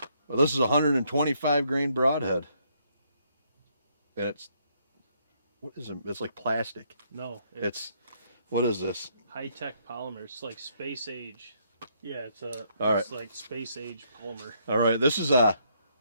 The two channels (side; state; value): both; inverted; correlation -0.71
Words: Well, this is a 125 grain broadhead. And it's, what is it? It's like plastic. No. It's what is this? High-tech polymer. It's like space age. Yeah, it's like space age polymer. All right, this is a